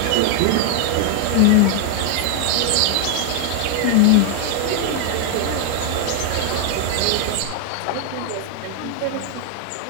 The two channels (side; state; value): both; different; correlation 0.00